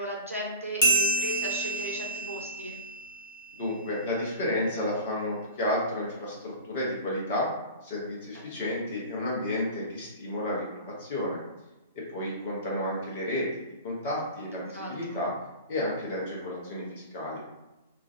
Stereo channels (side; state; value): both; inverted; correlation -0.34